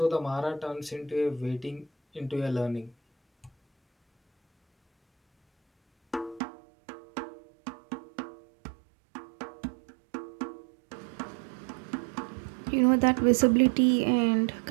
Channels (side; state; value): left; drops out; at 6.4 s